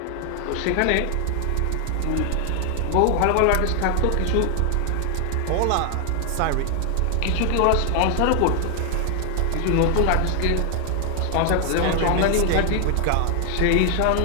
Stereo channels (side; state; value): both; different; correlation 0.00